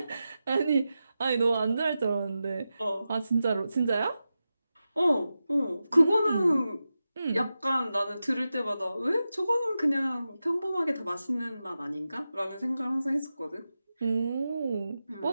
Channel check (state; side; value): inverted; both; correlation -0.92